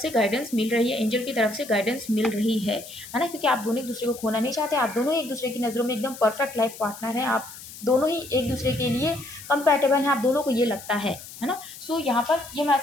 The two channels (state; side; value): noise; left; hiss, 15 dB below the sound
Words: गाइडेंस मिल रही है, एंजल की तरफ से गाइडेंस मिल रही है ना। क्योंकि आप दोनों एक दूसरे को खोना नहीं चाहते, आप दोनों एक दूसरे की नज़रों में एकदम परफेक्ट लाइफ पार्टनर हैं, आप दोनों ही एक दूसरे के लिए कंपैटिबल हैं, आप दोनों को ये लगता है ना। सो यहाँ पर ये